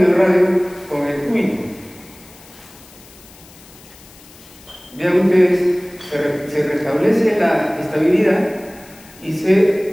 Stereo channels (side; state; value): left; noise; hiss, 23 dB below the sound